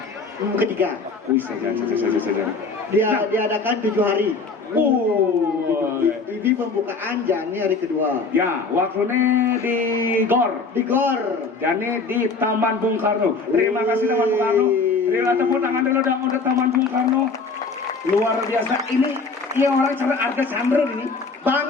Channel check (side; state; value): right; quieter; 4.3 dB